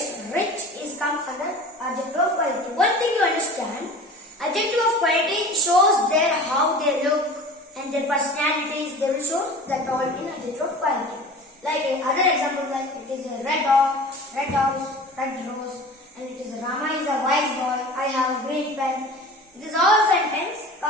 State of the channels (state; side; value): normal; both; correlation 0.39